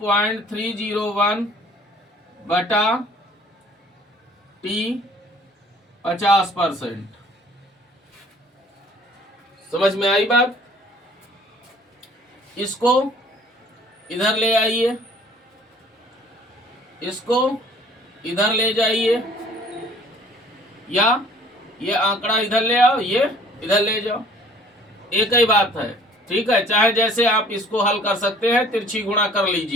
बटा टी 50%। समझ में आई बात? इसको इधर ले आइए, इसको इधर ले जाइए, या ये आंकड़ा इधर ले आओ, ये इधर ले जाओ, एक ही बात है। ठीक है, चाहे जैसे आप इसको हल कर सकते हैं, तिरछी गुणा कर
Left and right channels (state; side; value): normal; both; correlation 0.54